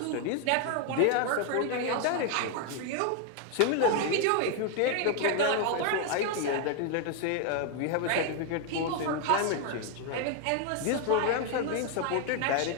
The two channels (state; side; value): different; both; correlation 0.00